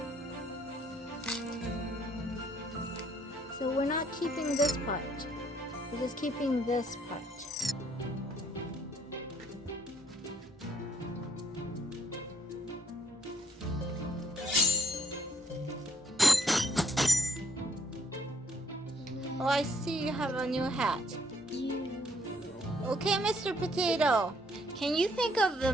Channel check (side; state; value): both; normal; correlation 0.67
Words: So we're not keeping this part. We're just keeping this part. Oh, I see you have a new hat. Okay, Mr. Potato. Can you think of the